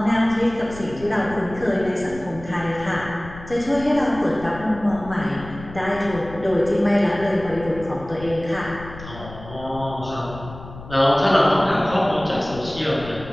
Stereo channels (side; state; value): left; noise; rumble, 15 dB below the sound